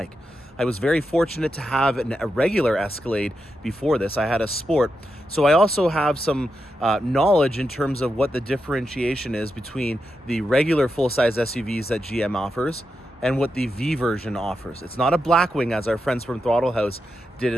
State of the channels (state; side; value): normal; both; correlation 0.86